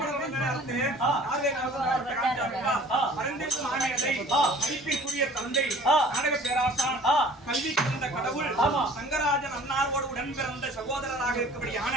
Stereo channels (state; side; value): normal; both; correlation 0.49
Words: நேரத்து ஆவே காமிச்சாருப்பா அரந்தேசு மாமேதை மதிப்பிற்குரிய தந்தை நாடக பேராசான் கல்வி கலந்த கடவுள் சங்கராஜன் அன்னாரோடு உடன் பிறந்த சகோதரராக